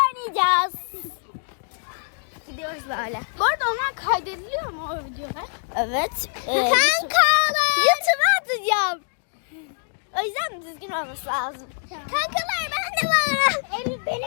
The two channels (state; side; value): silent; right; digital silence